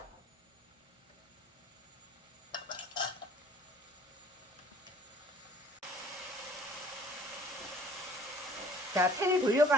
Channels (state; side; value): normal; both; correlation 0.54